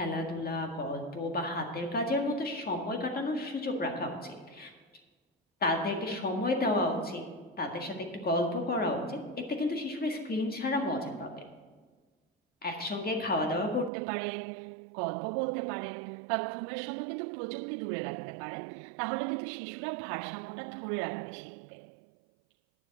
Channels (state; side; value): drops out; left; at 13.9 s